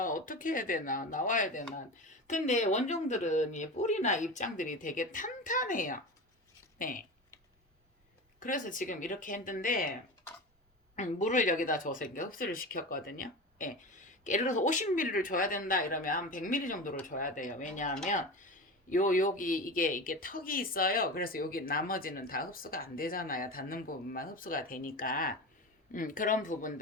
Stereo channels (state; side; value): normal; both; correlation 0.27